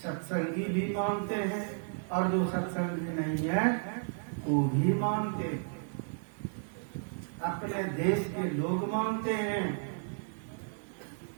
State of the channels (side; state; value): left; silent; 56 dB below the other